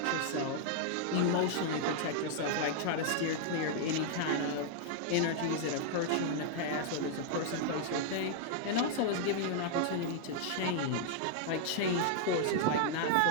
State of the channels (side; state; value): both; different; correlation -0.01